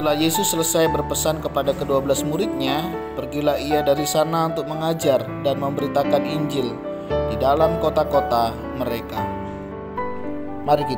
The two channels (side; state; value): both; identical; correlation 1.00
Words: Yesus selesai berpesan kepada ke-12 muridnya, pergilah ia dari sana untuk mengajar dan memberitakan Injil di dalam kota-kota mereka. Mari